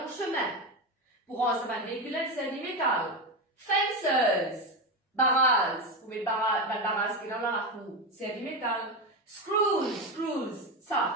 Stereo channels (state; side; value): normal; both; correlation 0.15